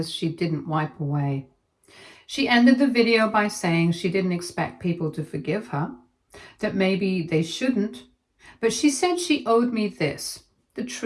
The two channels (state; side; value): identical; both; correlation 1.00